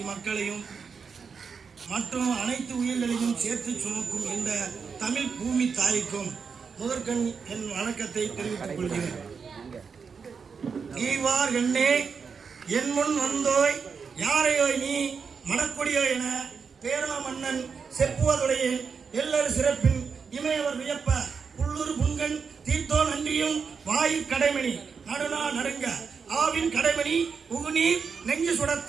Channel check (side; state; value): left; quieter; 5.7 dB